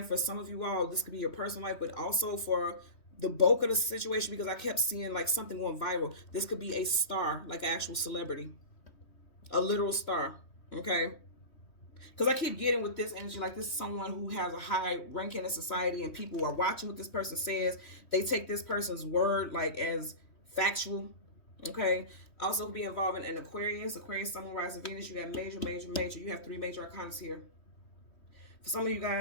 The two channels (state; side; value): late; right; 3.2 ms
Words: for some of you all, this could be your personal life, but also for the bulk of the situation, because I kept seeing like something going viral. This could be a star, like an actual celebrity, a literal star, okay? Because I keep getting with this energy, like this is someone who has a high ranking in society and people are watching what this person says. They take this person's word like as factual, okay? Also could be involving an Aquarius, Sun, Moon, Rising, Venus. You got major. You have 3 major arcanas here. For some of you